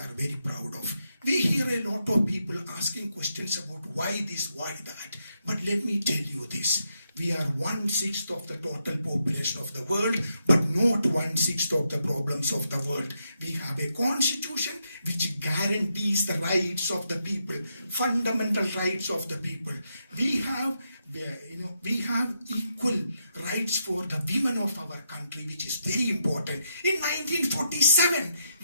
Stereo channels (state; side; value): inverted; both; correlation -0.81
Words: very proud of. We hear a lot of people asking questions about why this, why that. But let me tell you this. We are 1/6 of the total population of the world, but not 1/6 of the problems of the world. We have a constitution which guarantees the rights of the people, fundamental rights of the people. We have equal rights for the women of our country, which is very important. In 1947,